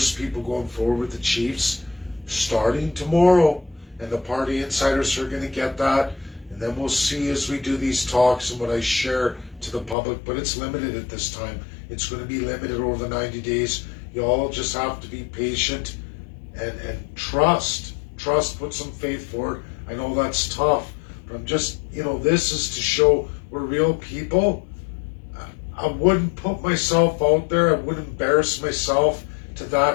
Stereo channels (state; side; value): drops out; right; at 10.0 s